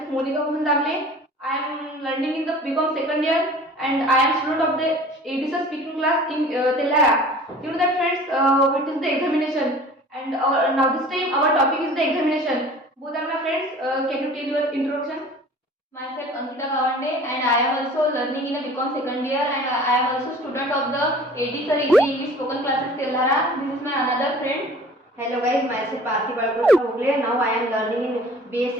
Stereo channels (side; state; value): both; normal; correlation 0.45